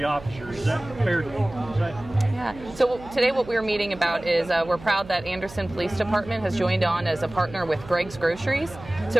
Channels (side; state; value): right; noise; hum, 17 dB below the sound